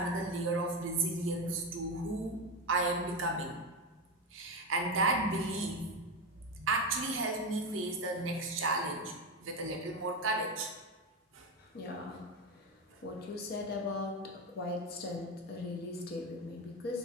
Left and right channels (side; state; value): both; normal; correlation 0.15